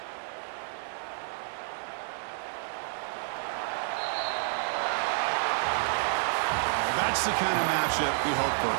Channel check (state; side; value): silent; left; 58 dB below the other